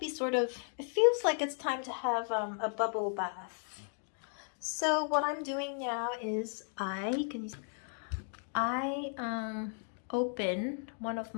it feels like it's time to have a bubble bath. So what I'm doing now is I open one of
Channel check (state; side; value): silent; right; 54 dB below the other